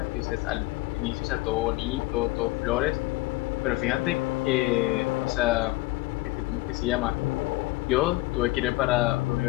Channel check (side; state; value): right; quieter; 20.0 dB